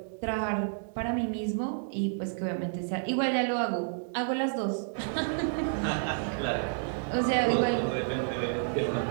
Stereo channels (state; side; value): silent; left; digital silence